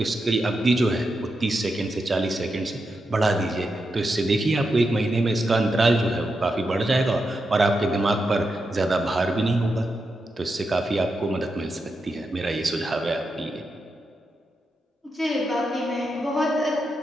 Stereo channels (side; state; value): both; normal; correlation 0.86